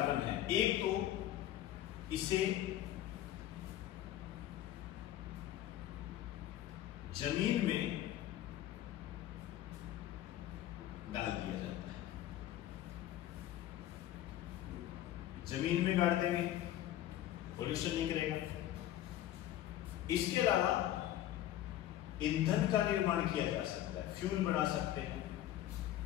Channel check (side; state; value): right; quieter; 12.9 dB